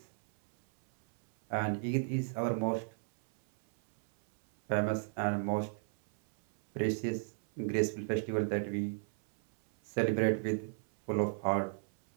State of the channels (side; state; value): left; silent; 55 dB below the other